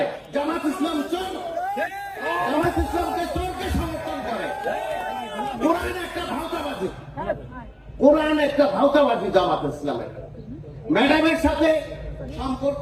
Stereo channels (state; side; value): identical; both; correlation 1.00